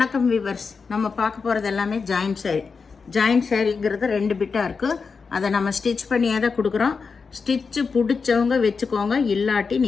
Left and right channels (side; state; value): right; quieter; 5.1 dB